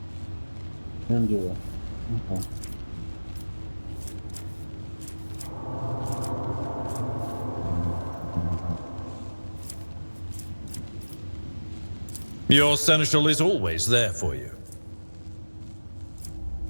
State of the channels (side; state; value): both; inverted; correlation -1.00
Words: Can do it. Okay. Your seneschal is always there for you.